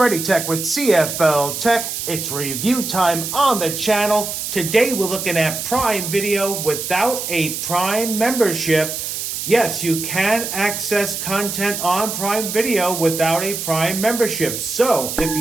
with CFL-TECH. It's review time on the channel. Today we're looking at Prime Video without a Prime membership. Yes, you can access content on Prime Video without a Prime membership. So if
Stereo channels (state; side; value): noise; right; hiss, 5 dB below the sound